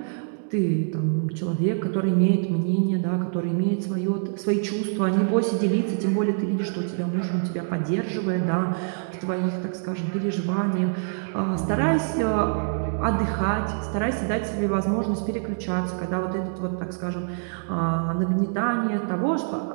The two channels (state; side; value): silent; left; digital silence